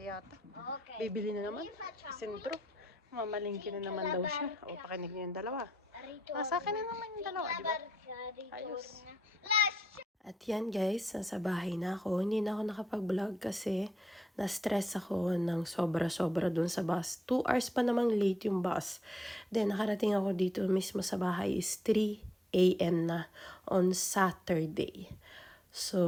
yata. Bibili na naman sa sentro. Mamalingki na naman daw siya. O, pakinig niyo yung dalawa. Sa akin na naman yung dalawa, di ba? Ayos. At yan guys, nasa bahay na ako. Hindi na ako nakapag-vlog kasi na-stress ako ng sobra-sobra dun sa bus. 2 hours pa namang late yung bus. Then nakarating ako dito mismo sa bahay is 3 a.m. na on Saturday.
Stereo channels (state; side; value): normal; both; correlation 0.79